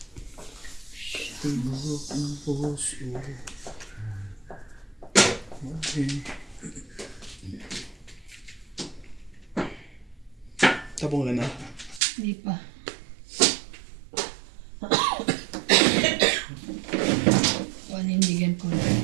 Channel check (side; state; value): left; drops out; at 12.0 s